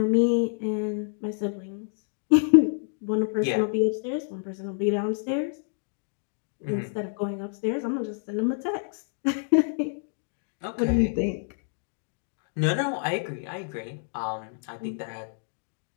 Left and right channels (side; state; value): right; silent; digital silence